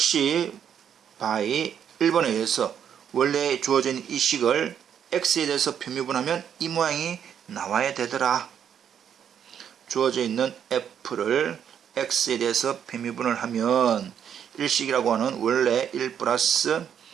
by 1번에 의해서 원래 주어진 이 식을 x에 대해서 편미분하면 이 모양이 나와야 되더라. 주어져 있는 f를 x에 대해서 편미분을 하면 일식이라고 하는 원래 1 플러스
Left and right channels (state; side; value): quieter; left; 8.6 dB